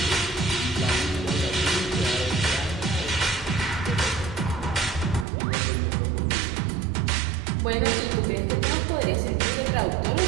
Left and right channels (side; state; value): left; drops out; at 5.2 s